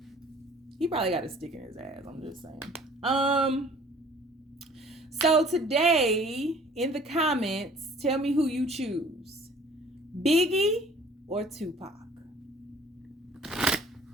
He probably got a stick in his ass, I'm just saying. So today, in the comments, tell me who you choose. Biggie or Tupac?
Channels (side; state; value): both; normal; correlation 0.52